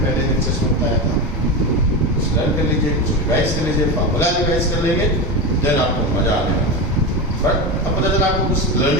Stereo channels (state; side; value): normal; both; correlation 0.19